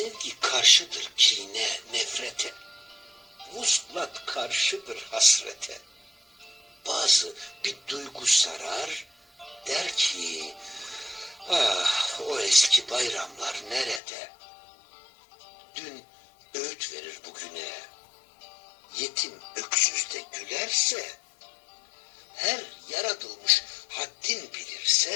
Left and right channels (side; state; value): right; drops out; at 14.0 s